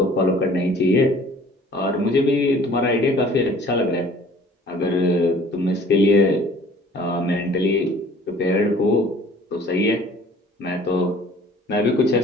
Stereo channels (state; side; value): normal; both; correlation 0.51